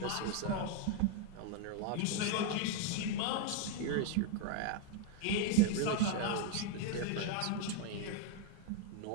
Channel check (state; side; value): different; both; correlation 0.01